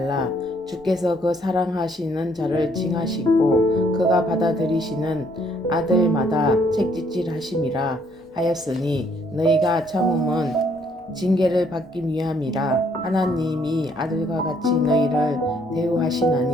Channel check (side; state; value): both; normal; correlation 0.67